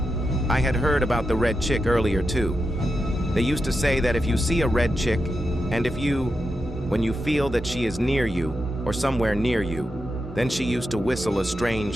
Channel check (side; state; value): both; normal; correlation 0.88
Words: I had heard about the red chick earlier too. They used to say that if you see a red chick, and when you feel that she is near you or somewhere near you, then she used to whistle a